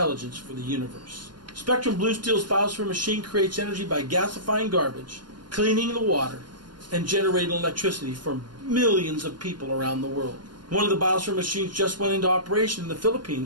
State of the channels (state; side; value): late; left; 0.71 ms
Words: for the universe. Spectrum Blue Steel's biosphere machine creates energy by gasifying garbage, cleaning the water, and generating electricity for millions of people around the world. One of the biosphere machines just went into operation in the